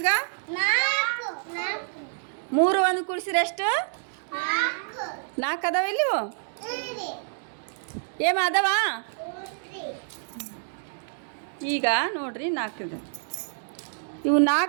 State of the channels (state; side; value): silent; left; digital silence